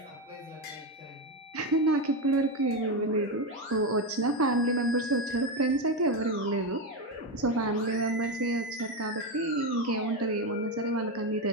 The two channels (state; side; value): normal; both; correlation 0.12